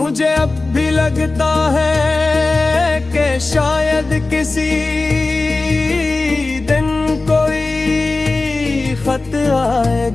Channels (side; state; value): right; quieter; 3.4 dB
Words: अब भी लगता है कि शायद किसी दिन कोई खत